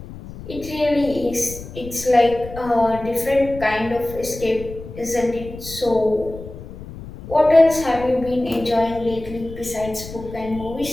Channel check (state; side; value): noise; left; rumble, 13 dB below the sound